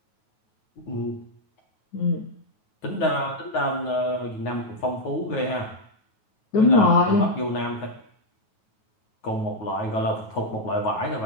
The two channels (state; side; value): late; right; 9.3 ms